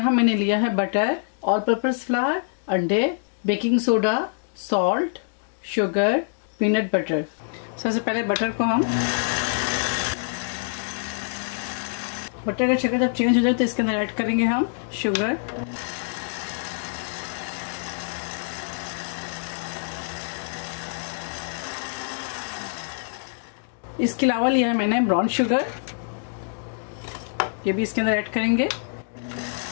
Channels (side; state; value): right; silent; digital silence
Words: मैंने लिया है बटर, ऑल पर्पस फ्लावर, अंडे, baking soda, salt, sugar, peanut butter. सबसे पहले बटर को हम बटर का शक्कर जब चेंज हो जाए तो इसके अंदर ऐड करेंगे हम शुगर, इसके अलावा लिया है मैंने ब्राउन शुगर, ये भी इसके अंदर ऐड करेंगे।